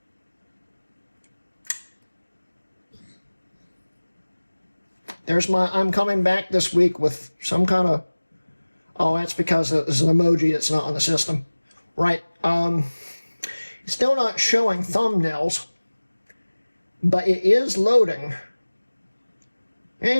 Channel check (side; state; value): both; inverted; correlation -1.00